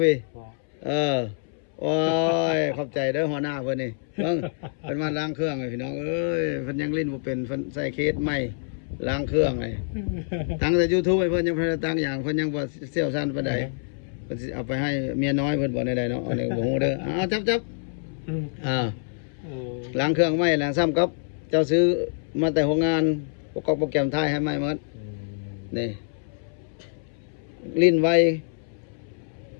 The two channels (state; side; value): silent; right; 61 dB below the other